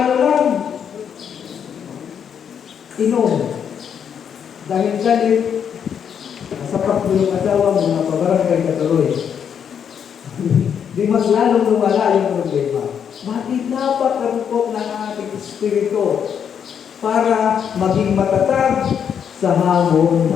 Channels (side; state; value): right; quieter; 7.9 dB